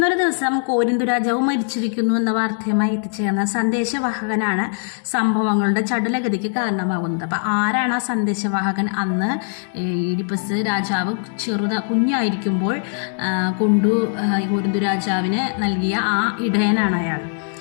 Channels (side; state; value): right; silent; 65 dB below the other